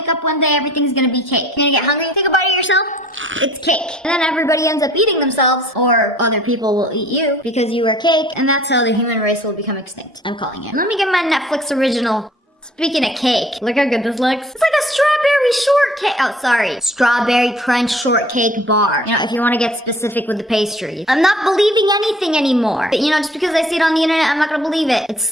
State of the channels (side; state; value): both; normal; correlation 0.53